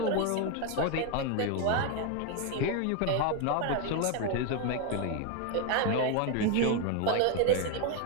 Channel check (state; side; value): different; both; correlation 0.01